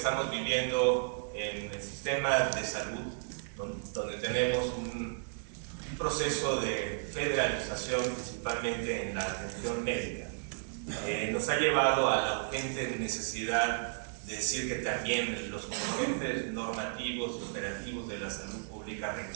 viviendo en el sistema de salud, donde tenemos un proceso de federalización principalmente en la atención médica, nos ha llevado a la urgente necesidad de decir que también los componentes normativos y operativos de la salud pública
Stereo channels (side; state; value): left; silent; digital silence